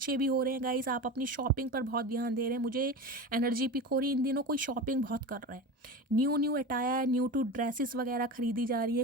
भी हो रहे हैं गाइस। आप अपनी शॉपिंग पर बहुत ध्यान दे रहे हैं। मुझे एनर्जी पिक हो रही है इन दिनों कोई शॉपिंग बहुत कर रहा है, new attire, new to dresses वगैरह खरीदी जा रही है।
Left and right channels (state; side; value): normal; both; correlation 0.28